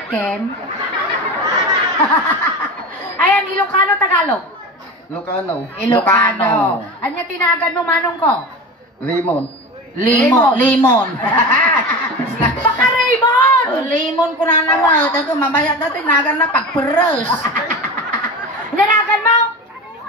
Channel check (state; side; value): normal; both; correlation 0.29